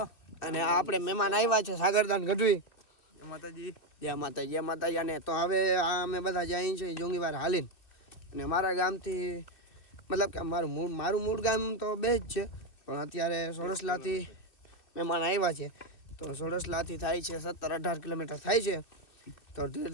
અને આપણે મહેમાન આવ્યા છે સાગરદાન ગઢવી. જય માતાજી જય માતાજી જય માતાજી. અને તો હવે અમે બધા જઈએ છીએ જોંગીવાર હાલીને. અને મારા ગામથી મતલબ કે મારું મૂળ ગામ તો બે જ છે, પણ અત્યારે સોડસલાથી મહેમાન આવ્યા છે. તો સોડસલાથી થાય છે 17-18 કિલોમીટર થાય છે. તો ધીરે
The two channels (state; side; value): late; right; 2.6 ms